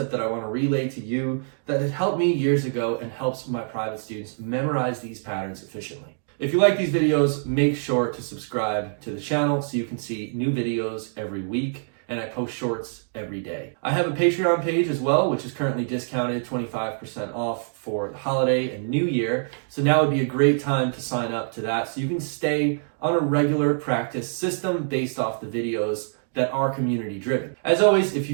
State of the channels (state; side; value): silent; left; digital silence